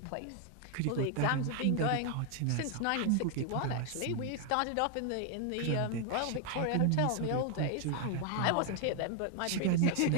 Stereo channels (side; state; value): both; different; correlation 0.01